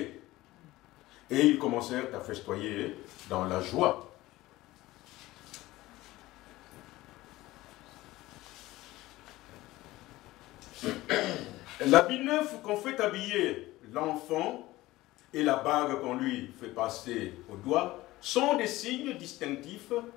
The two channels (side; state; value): right; quieter; 17.8 dB